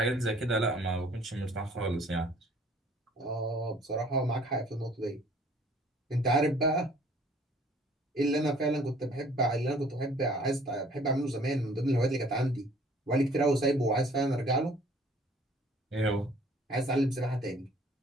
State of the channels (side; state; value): both; normal; correlation 0.55